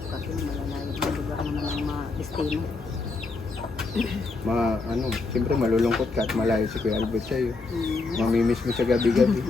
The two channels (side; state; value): right; quieter; 3.9 dB